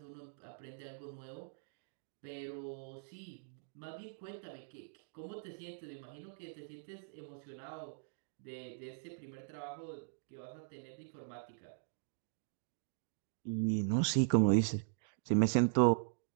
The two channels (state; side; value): silent; left; digital silence